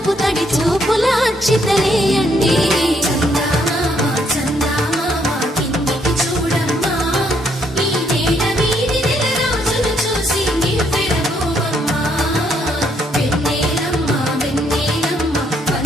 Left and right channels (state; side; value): normal; both; correlation 0.71